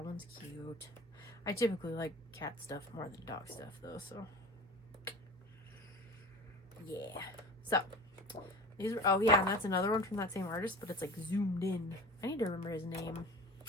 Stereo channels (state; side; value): normal; both; correlation 0.37